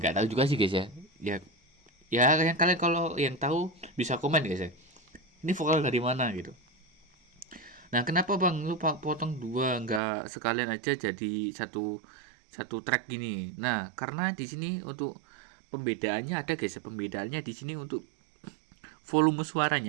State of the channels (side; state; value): left; drops out; at 10.0 s